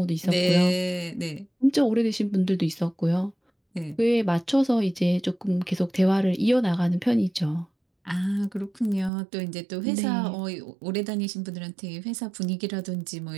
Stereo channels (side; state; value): left; drops out; at 9.1 s